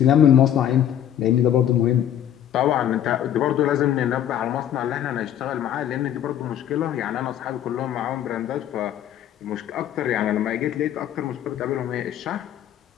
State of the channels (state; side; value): quieter; right; 10.6 dB